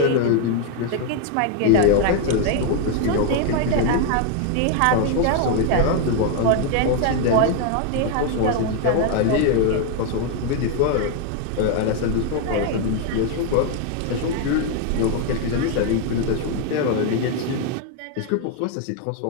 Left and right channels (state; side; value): different; both; correlation 0.01